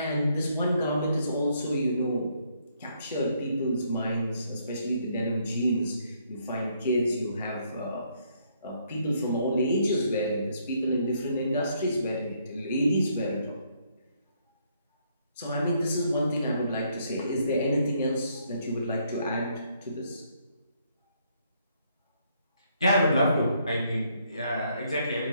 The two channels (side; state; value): both; inverted; correlation -0.71